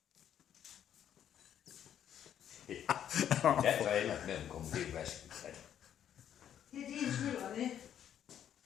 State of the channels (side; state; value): right; quieter; 9.8 dB